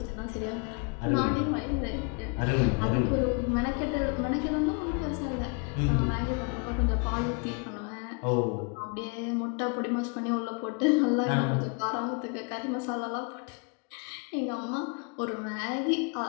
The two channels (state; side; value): quieter; right; 34.1 dB